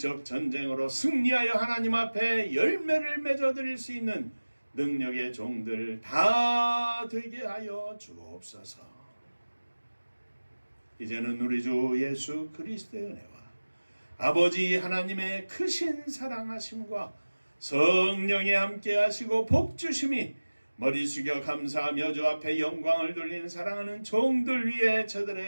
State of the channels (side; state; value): both; inverted; correlation -1.00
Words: 전쟁으로 승리하여 하나님 앞에 열매를 맺어드릴 수 있는 능력의 종들 다 되게 하여 주옵소서. 이제는 우리 주 예수 그리스도의 은혜와 아버지 하나님의 크신 사랑하심과 성령이 함께 하시고 복주심이 머리 숙여 감사하며 주 앞에 영광을 돌리는 사랑하는 종들 위에